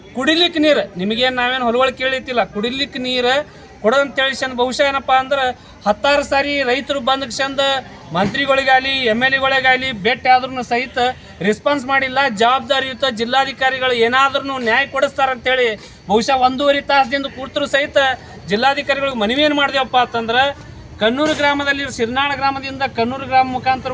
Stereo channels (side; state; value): both; identical; correlation 1.00